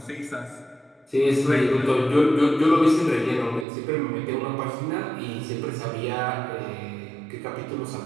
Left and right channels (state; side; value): drops out; left; at 3.7 s